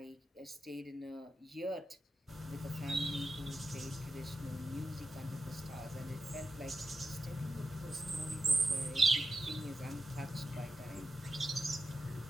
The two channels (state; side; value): normal; both; correlation 0.89